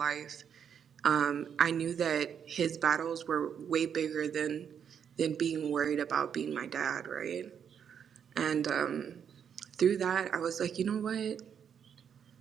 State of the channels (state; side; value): quieter; left; 7.9 dB